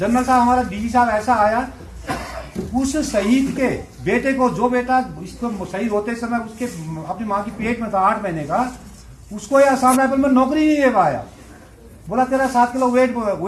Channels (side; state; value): both; identical; correlation 1.00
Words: साहब हमारा डीजी साहब ऐसा आया, उस शहीद के बेटे को, जो बेटा इसको शहीद होते समय उसके अपनी माँ की पेट में था 8 महीने का, उसको ये असम राइफल में नौकरी नहीं दे पाया। बोला तेरा 7 किलो वेट